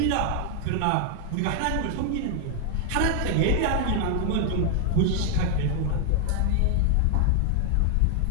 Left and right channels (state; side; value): different; both; correlation 0.00